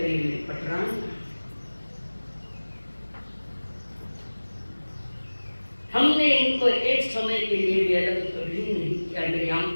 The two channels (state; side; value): inverted; both; correlation -1.00